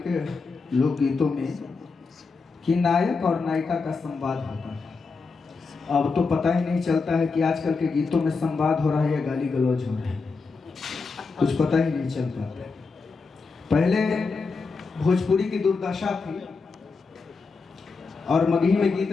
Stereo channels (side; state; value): right; quieter; 4.5 dB